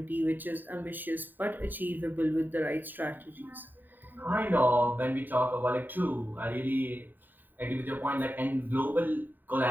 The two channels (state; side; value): late; left; 0.090 ms